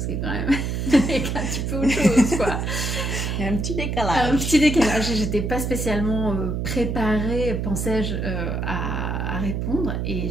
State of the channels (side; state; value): right; noise; hum, 1 dB below the sound